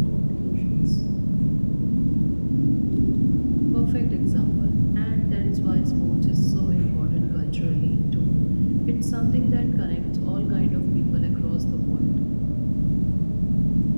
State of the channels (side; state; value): both; inverted; correlation -1.00